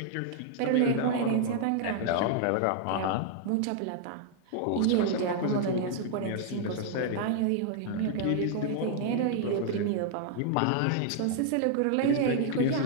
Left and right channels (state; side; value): different; both; correlation -0.01